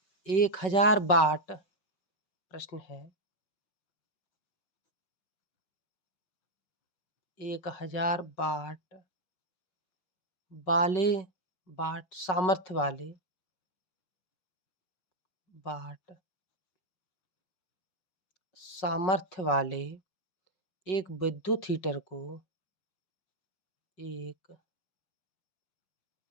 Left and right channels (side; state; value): right; late; 5.4 ms